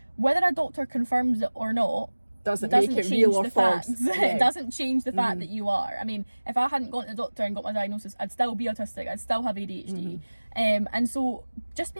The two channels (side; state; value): both; inverted; correlation -1.00